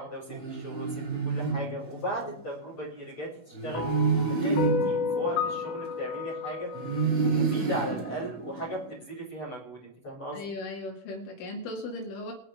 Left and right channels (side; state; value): right; late; 16 ms